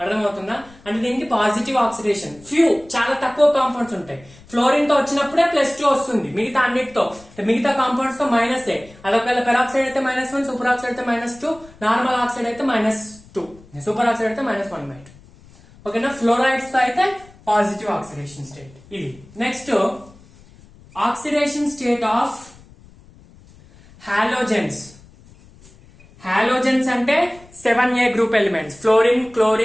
అర్థమవుతుందా? అంటే దీనికి పాజిటివ్ ఆక్సిడేషన్, ఫ్యూ చాలా తక్కువ కాంపౌండ్స్ ఉంటాయి. ఫ్లోరిన్ తో వచ్చినప్పుడే +2 వస్తుంది, మిగతా అన్నిటితో మిగతా కాంపౌండ్స్ తో -8. అదొకవేళ పెరాక్సైడ్ అయితే -1, సూపర్ ఆక్సైడ్ అయితే -2, నార్మల్ ఆక్సైడ్ అయితే -2, సూపర్ ఆక్సైడ్ అయితే -1/2. ఓకేనా? ఫ్లోరైడ్స్ తో అయితే పాజిటివ్ ఆక్సిడేషన్ స్టేట్ ఇది. Next oxidation state of halogens. Halogens అంటే 7A group elements, fluorine,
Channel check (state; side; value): noise; left; rumble, 24 dB below the sound